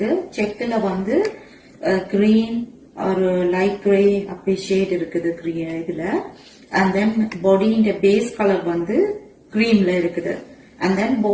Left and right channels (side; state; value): both; identical; correlation 1.00